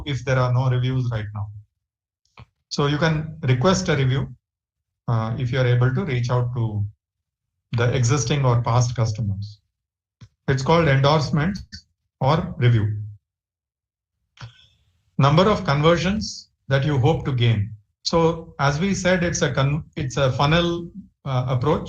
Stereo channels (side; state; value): both; identical; correlation 1.00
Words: if there are no reviews right now. So you can request a review if you're able to reach out to the existing or past customers. It's called endorsement or review. Number of conversions that you hope to gain. So as we said, it's a funnel